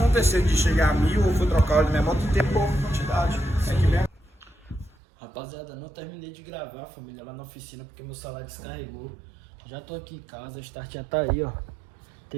de chegar a 1000 ou for trocar o óleo da minha moto e ter pouca quantidade. É que bem. Rapaziada, não terminei de gravar, família, lá na oficina, porque meu celular descarregou. Já tô aqui em casa, a start já tá aí, ó.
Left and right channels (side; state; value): left; drops out; at 5.0 s